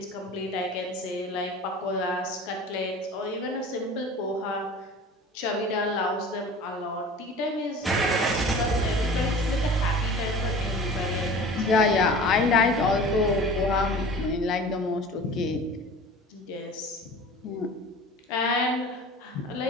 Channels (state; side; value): normal; both; correlation 0.40